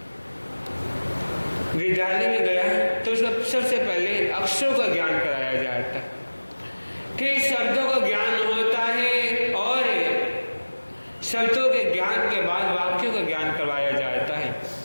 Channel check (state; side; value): inverted; both; correlation -1.00